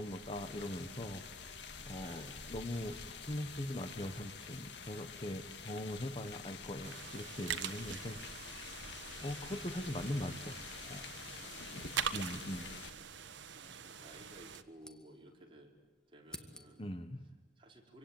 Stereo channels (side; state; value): both; normal; correlation 0.51